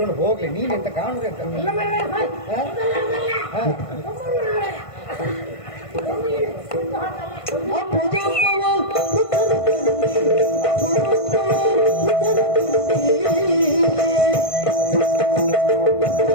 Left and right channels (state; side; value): late; right; 1.5 ms